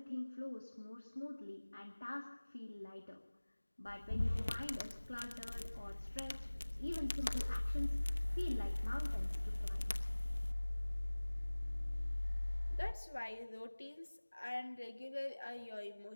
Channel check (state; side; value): inverted; both; correlation -1.00